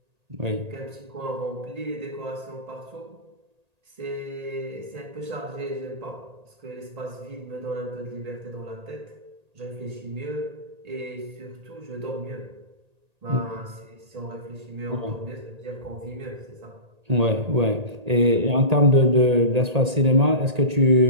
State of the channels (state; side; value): late; left; 1.8 ms